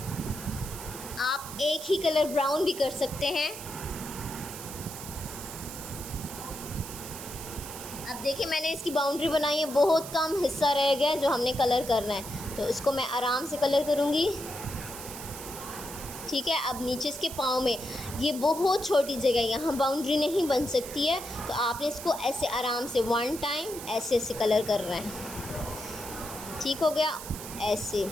आप एक ही कलर ब्राउन भी कर सकते हैं। अब देखिए मैंने इसकी बाउंड्री बनाई है, बहुत कम हिस्सा रह गया जो हमने कलर करना है, तो इसको मैं आराम से कलर करूँगी, ठीक है। अब नीचे इसके पाँव में ये बहुत छोटी जगह है, यहाँ बाउंड्री नहीं बन सकती है, तो आपने इसको ऐसे आराम से 1 टाइम ऐसे ऐसे कलर करना है, ठीक हो गया। ऐसे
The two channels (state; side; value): noise; right; hiss, 11 dB below the sound